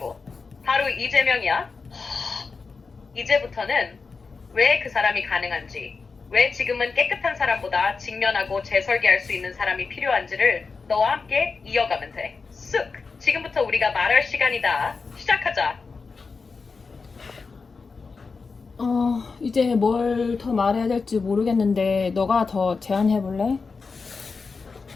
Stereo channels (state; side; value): quieter; right; 4.6 dB